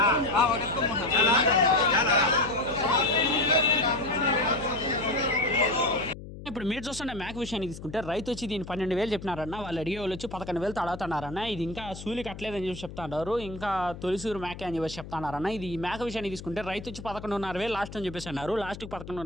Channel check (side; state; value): left; noise; hum, 13 dB below the sound